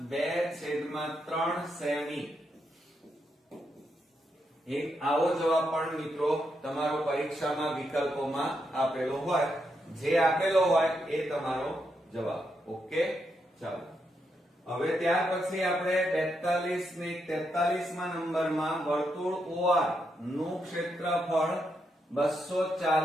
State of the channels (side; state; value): both; normal; correlation 0.81